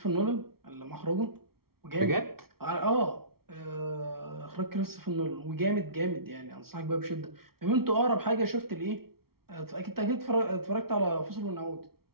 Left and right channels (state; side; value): late; left; 0.94 ms